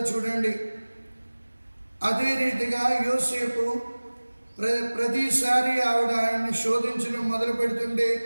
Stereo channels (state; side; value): inverted; both; correlation -1.00